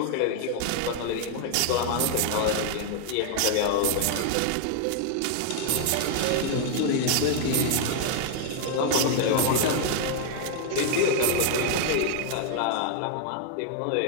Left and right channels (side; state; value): both; different; correlation 0.00